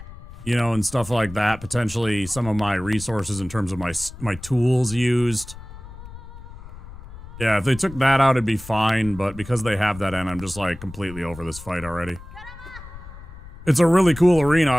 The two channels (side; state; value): left; noise; rumble, 15 dB below the sound